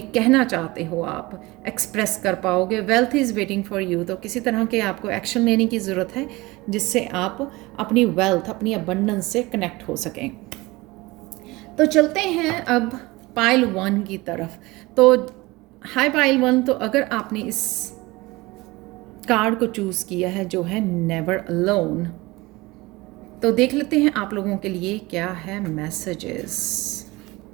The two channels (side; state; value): left; quieter; 21.7 dB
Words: कहना चाहते हो आप एक्सप्रेस कर पाओगे। Wealth is waiting for you, तो किसी तरह के आपको एक्शन लेने की ज़रूरत है जिससे आप अपनी वेल्थ, अपनी अबंडेंस से कनेक्ट हो सकें। तो चलते हैं अब पाइल 1 की तरफ। तो हाय पाइल 1, तो अगर आपने इस कार्ड को चूज़ किया है जो है नेवर अलोन, तो देख लेते हैं आप लोगों के लिए क्या है मैसेजेस।